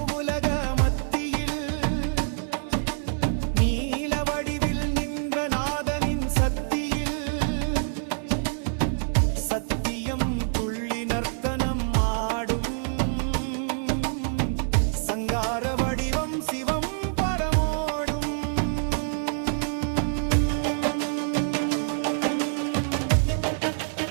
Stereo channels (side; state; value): left; silent; digital silence